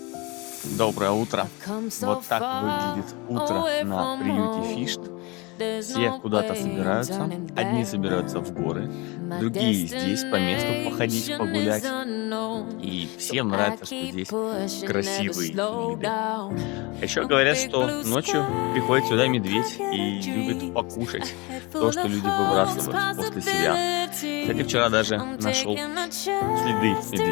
Доброе утро. Вот так выглядит утро на приюте Фишт. Все куда-то собираются. Одни собираются в горы, другие здесь по месту походить, погулять. И всем нравится, что здесь красивые виды. А еще говорят, что ночью приходит сюда медведь и любит покушать то, что люди выбрасывают после себя. Кстати, вчера даже нашел следы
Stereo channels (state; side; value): quieter; right; 26.3 dB